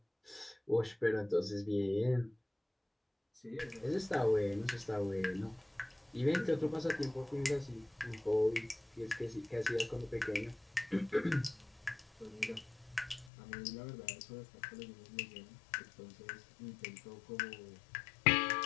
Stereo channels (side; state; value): right; drops out; at 13.3 s